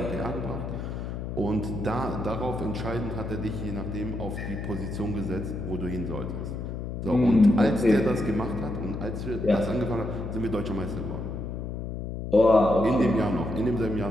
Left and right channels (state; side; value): noise; left; hum, 5 dB below the sound